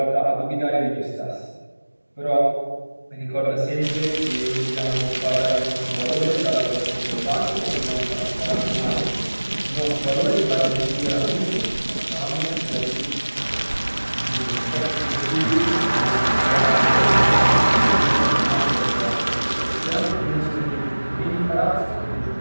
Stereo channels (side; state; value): both; inverted; correlation -1.00